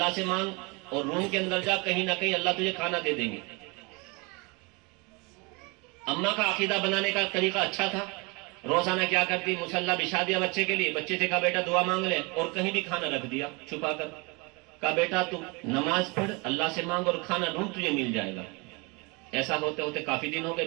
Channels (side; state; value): left; quieter; 28.6 dB